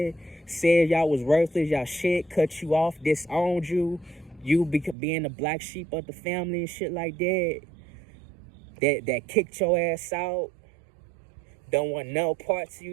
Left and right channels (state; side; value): drops out; left; at 5.0 s